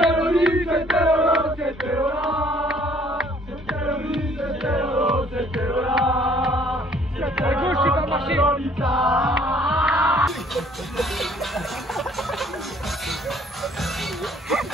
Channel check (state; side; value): normal; both; correlation 0.59